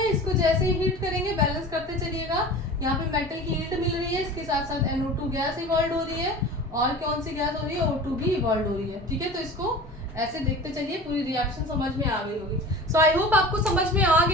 इसको जैसे ही हीट करेंगे बैलेंस करते चलिएगा, यहाँ पे मेटल की हीट मिल रही है, इसके साथ साथ NO2 गैस इवॉल्व हो रही है, और कौन सी गैस हो रही है, O2 भी इवॉल्व हो रही है, ठीक है। तो इसको ऐसे देखते चलिए, पूरी रिएक्शन समझ में आ गई होगी। सो आई होप आपको समझ में आ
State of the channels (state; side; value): normal; both; correlation 0.37